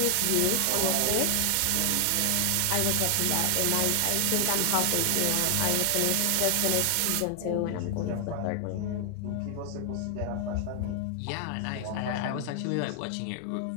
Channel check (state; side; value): different; both; correlation 0.00